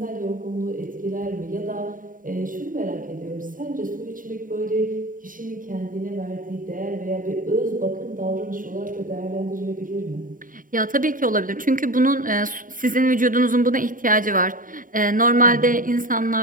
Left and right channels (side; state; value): left; late; 0.39 ms